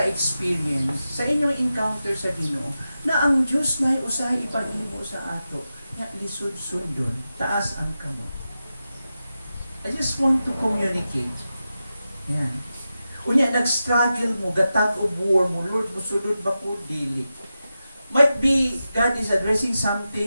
sa inyong encounter sa Ginoo na ang Diyos na usahay ipag-imo sa ato, na lisod sundon, taas ang kamot. I just want to communicate. Yan. Unya, nag-struggle mo, gatag o war mo, Lord, musulod ba ko, dili. Might be God is addressing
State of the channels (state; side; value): inverted; both; correlation -0.91